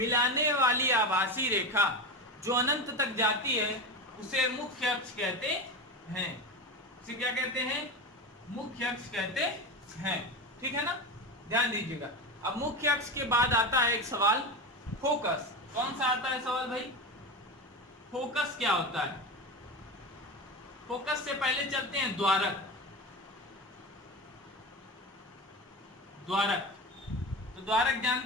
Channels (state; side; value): normal; both; correlation 0.23